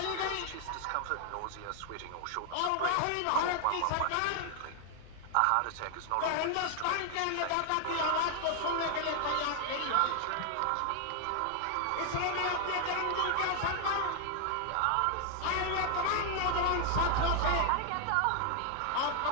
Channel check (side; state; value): both; different; correlation 0.00